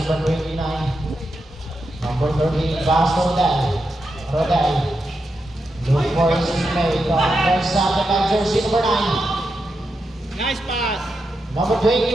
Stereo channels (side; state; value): both; normal; correlation 0.86